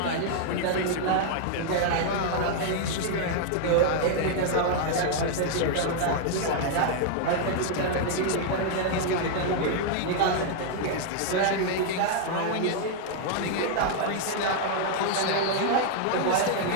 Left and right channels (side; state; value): both; different; correlation 0.00